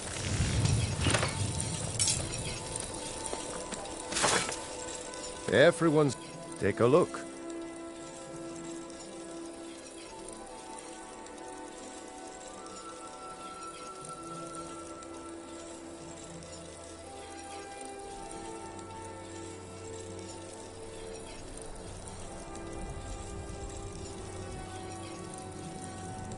Everyone's... Take a look.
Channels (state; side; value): identical; both; correlation 1.00